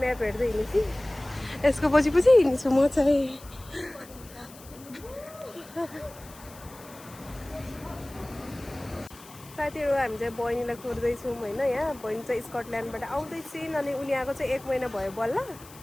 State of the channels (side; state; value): left; noise; hiss, 20 dB below the sound